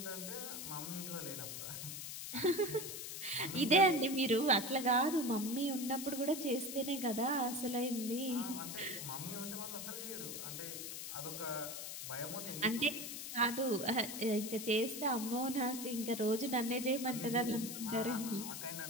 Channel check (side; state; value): left; noise; hiss, 7 dB below the sound